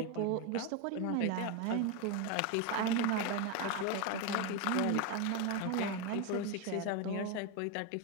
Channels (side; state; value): both; different; correlation 0.02